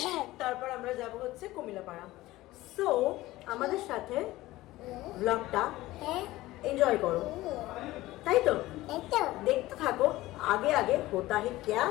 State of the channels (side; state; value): right; quieter; 17.5 dB